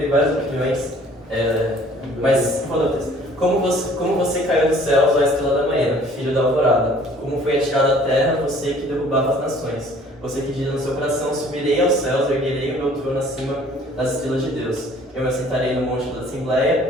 várias opiniões, mas qual é o texto? Como você caiu dos céus, ó estrela da manhã, filho da alvorada. Como foi atirado à terra, você que derrubava as nações. Você que diz no seu coração, subirei aos céus, erguerei o meu trono acima das estrelas de Deus. Eu me assentarei no monte da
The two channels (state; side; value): normal; both; correlation 0.54